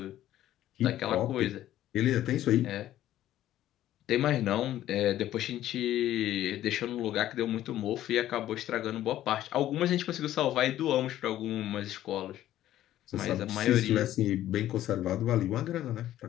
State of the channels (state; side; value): quieter; right; 13.1 dB